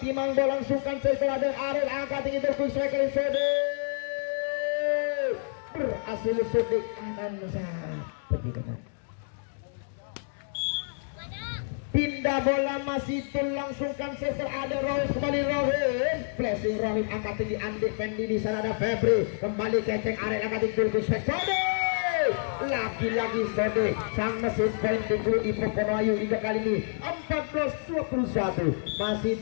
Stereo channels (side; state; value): right; silent; digital silence